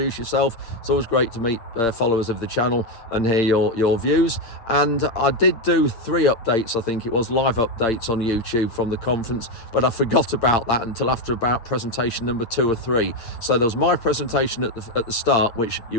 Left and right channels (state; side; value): late; right; 8.7 ms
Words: yourself. It's always great to meet followers of the channel and hear your views. And I did do 3 updates, I think it was, live updates on YouTube from the conference, but I forgot about that until after about presentation number 2 or 3. So there was my presentation at the start, which you